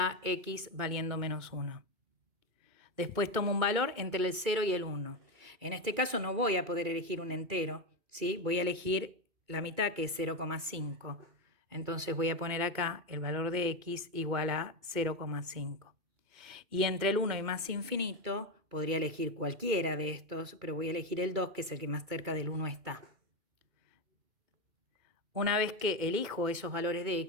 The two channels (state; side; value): late; left; 2.1 ms